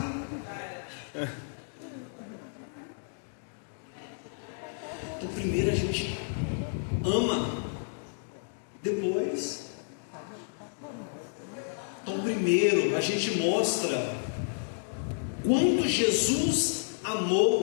Então, primeiro a gente ama, depois. Então, primeiro a gente mostra quanto Jesus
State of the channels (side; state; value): right; silent; digital silence